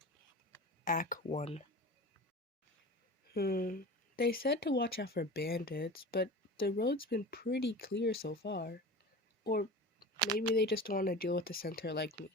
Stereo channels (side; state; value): both; normal; correlation 0.34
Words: Act 1. They said to watch out for bandits, but the road's been pretty clear so far. Or maybe they just don't want to deal with a centaur like me.